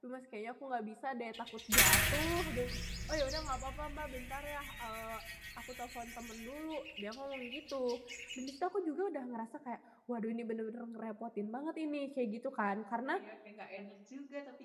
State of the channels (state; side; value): identical; both; correlation 1.00